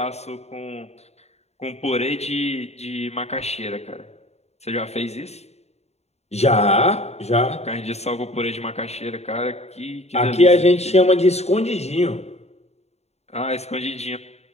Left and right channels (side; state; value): right; late; 0.31 ms